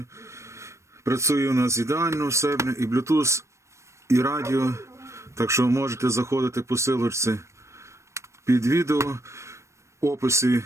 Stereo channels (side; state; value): left; late; 0.14 ms